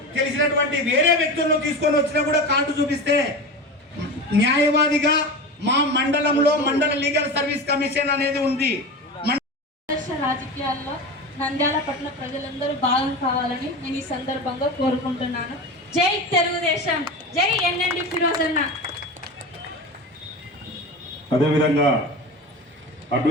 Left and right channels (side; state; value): both; normal; correlation 0.27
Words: తెలిసినటువంటి వేరే వ్యక్తులను తీసుకొని వచ్చినా కూడా కార్డు చూపిస్తే న్యాయవాదిగా మా మండలంలో మండల లీగల్ సర్వీస్ కమిషన్ అనేది ఉంది. రాజకీయాల్లో నంద్యాల పట్టణ ప్రజలందరూ భాగం కావాలని నేను ఈ సందర్భంగా కోరుకుంటున్నాను. జై తెలుగుదేశం, జై ఎన్ఎండి ఫిరోజ్ అన్న. అదేవిధంగా